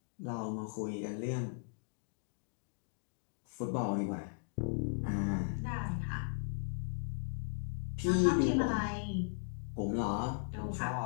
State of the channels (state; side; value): silent; right; digital silence